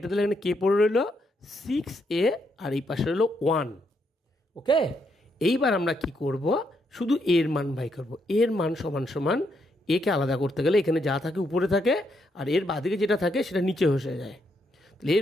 দিলে এখানে কে পড়ে রইল? 6a, আর এই পাশে রইল 1। ওকে, এইবার আমরা কি করব? শুধু এর মান বাই করব। এর মান সমান সমান, একে আলাদা করতে গেলে এখানে যা থাকে উপরে থাকে, আর এর বাদিকে যেটা থাকে সেটা নিচে বসে যায়। তাহলে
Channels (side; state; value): both; normal; correlation 0.77